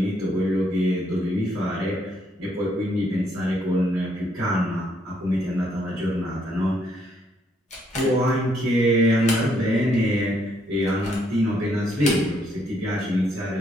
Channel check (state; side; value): normal; both; correlation 0.72